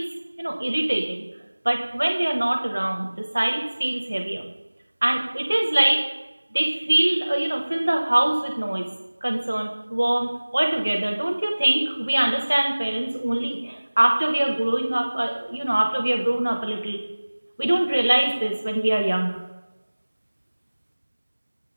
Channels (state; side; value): inverted; both; correlation -1.00